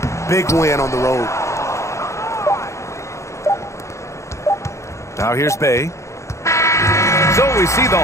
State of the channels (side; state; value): right; late; 0.14 ms